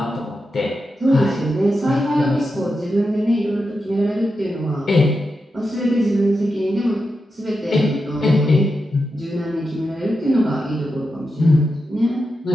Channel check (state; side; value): normal; both; correlation 0.88